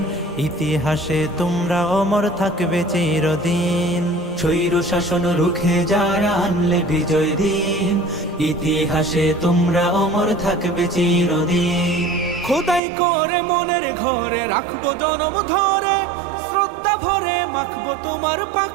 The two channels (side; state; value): left; drops out; at 12.8 s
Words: ইতিহাসে তোমরা অমর থাকবে চিরদিন। স্বৈর শাসন রুখে যারা আনলে বিজয় দিন, ইতিহাসে তোমরা অমর থাকবে চিরদিন। খোদাই করে মনের ঘরে রাখবো জনম ধরে, শ্রদ্ধা ভরে মাখবো তোমার পাক